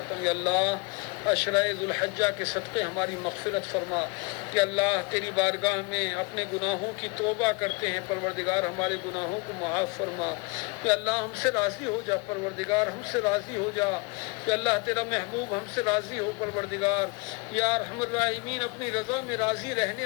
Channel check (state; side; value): quieter; right; 29.4 dB